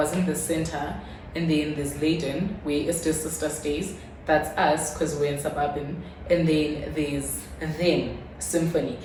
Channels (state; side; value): identical; both; correlation 1.00